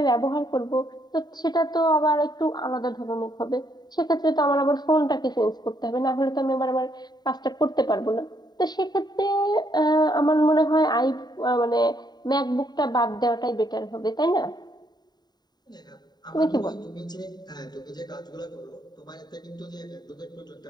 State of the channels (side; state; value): right; late; 0.20 ms